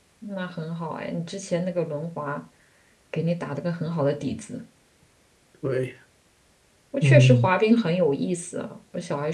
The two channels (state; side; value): identical; both; correlation 1.00